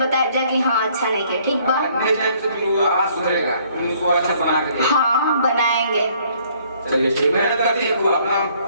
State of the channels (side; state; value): both; inverted; correlation -0.62